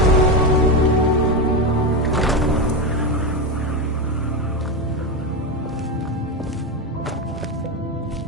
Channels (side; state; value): both; normal; correlation 0.13